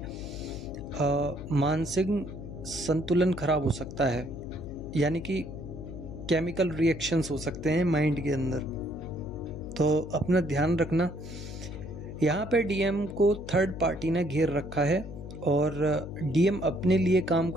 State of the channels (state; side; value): noise; left; hum, 10 dB below the sound